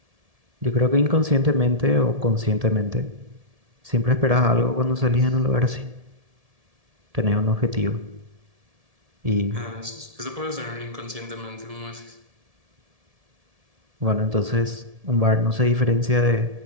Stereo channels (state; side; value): late; left; 1.7 ms